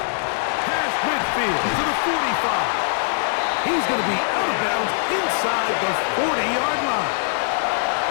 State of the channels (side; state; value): right; silent; 58 dB below the other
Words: Past midfield to the 45. He's going to be out of bounds inside the 40-yard line.